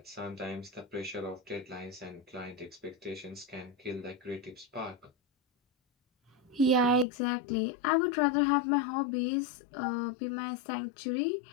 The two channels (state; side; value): drops out; right; at 7.1 s